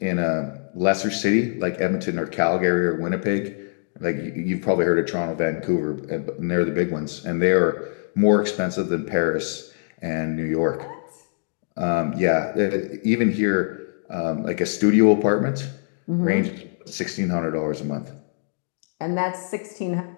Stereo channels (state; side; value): silent; right; digital silence